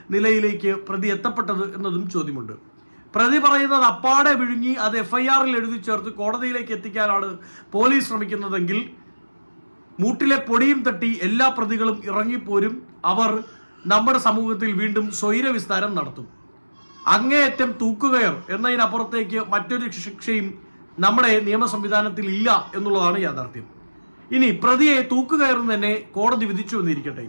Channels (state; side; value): inverted; both; correlation -1.00